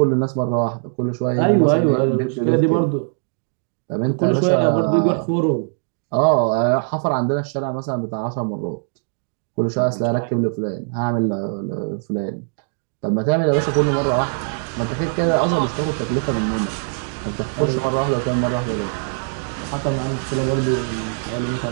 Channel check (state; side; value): silent; left; 65 dB below the other